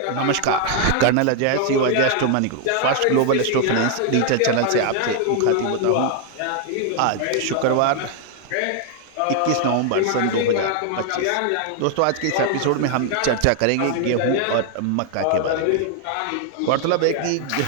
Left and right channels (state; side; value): different; both; correlation 0.00